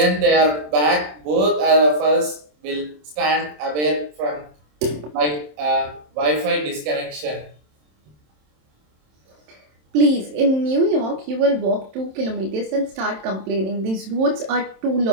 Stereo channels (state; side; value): late; left; 27 ms